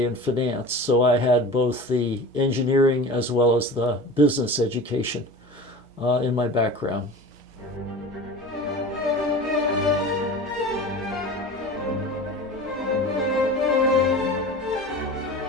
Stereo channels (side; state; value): both; normal; correlation 0.35